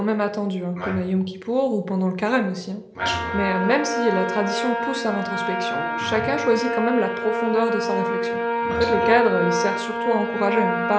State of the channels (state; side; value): identical; both; correlation 1.00